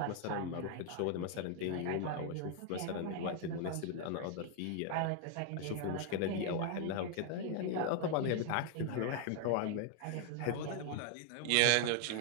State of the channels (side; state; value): both; different; correlation 0.00